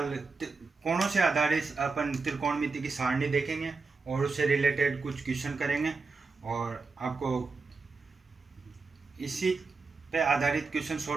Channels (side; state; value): left; quieter; 4.2 dB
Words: कोणों से आधारित अपन त्रिकोणमिति की सारणी देखेंगे और उससे रिलेटेड कुछ क्वेश्चन करेंगे, और आपको इसी पे आधारित क्वेश्चन